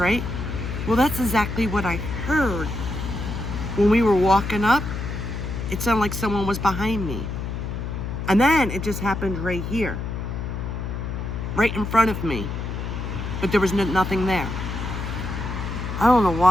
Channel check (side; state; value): left; noise; hum, 4 dB below the sound